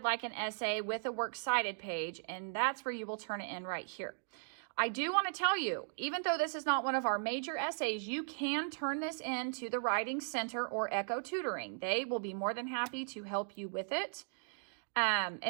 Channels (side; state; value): left; silent; digital silence